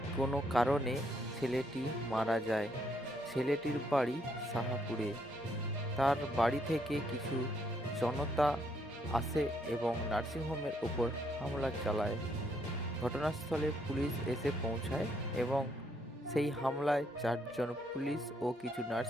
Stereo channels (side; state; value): both; normal; correlation 0.72